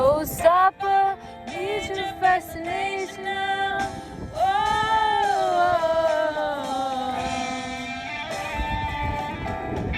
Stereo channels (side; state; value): both; identical; correlation 1.00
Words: need your fascination now.